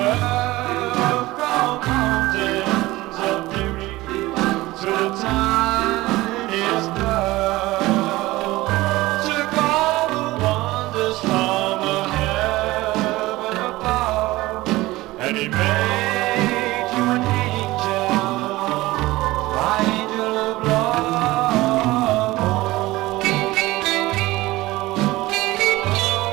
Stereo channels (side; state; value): left; quieter; 18.9 dB